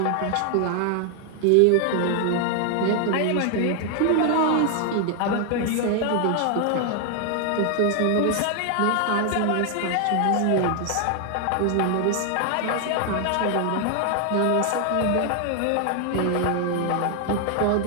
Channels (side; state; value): both; different; correlation 0.00